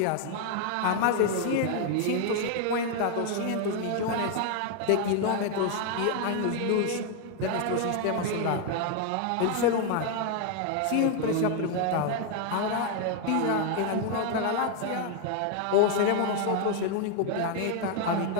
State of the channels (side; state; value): both; different; correlation 0.00